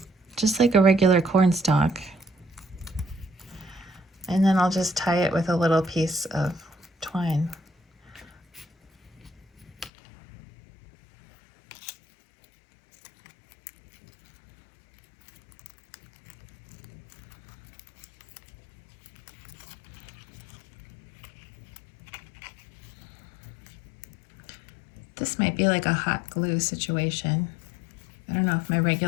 just like a regular corn stalk. And then I'll just tie it with a little piece of twine. This might be like a hot glue situation. I don't know if my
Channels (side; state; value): right; drops out; at 9.9 s